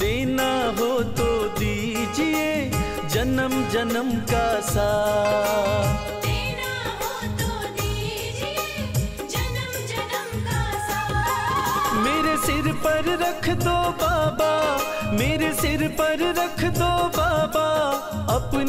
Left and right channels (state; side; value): identical; both; correlation 1.00